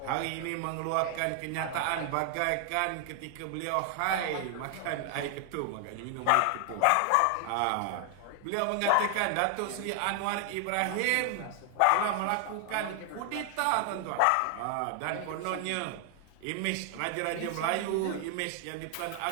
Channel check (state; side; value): different; both; correlation 0.00